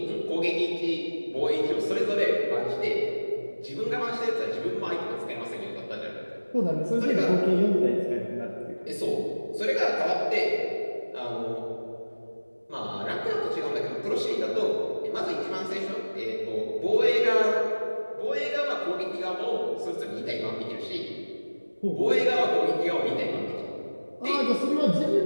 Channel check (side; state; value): both; inverted; correlation -1.00